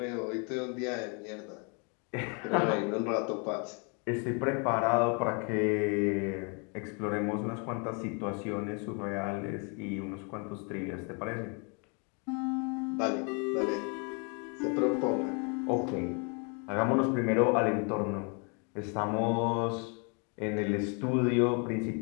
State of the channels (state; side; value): quieter; right; 36.0 dB